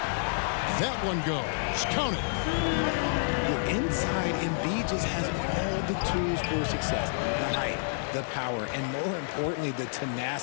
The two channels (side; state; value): right; silent; digital silence